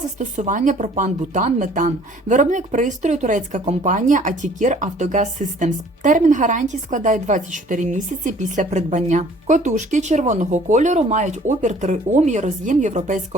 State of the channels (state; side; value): normal; both; correlation 0.55